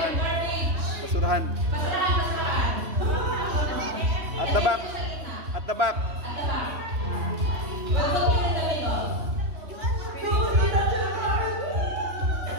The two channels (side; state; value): left; late; 3.2 ms